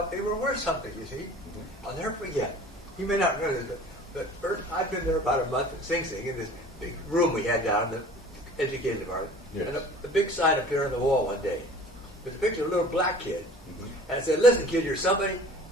they were worth something, you see. I'll never forget. You may not know this, but I've been there about a month at Sing Sing in this big room we had down in the education department. Yes. And a big sign appeared on the wall one day. There's a picture of a little black kid. And it said, "Listen, kid, you're somebody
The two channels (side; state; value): both; normal; correlation 0.46